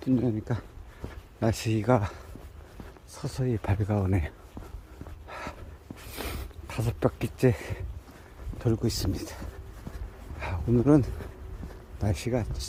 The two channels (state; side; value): identical; both; correlation 1.00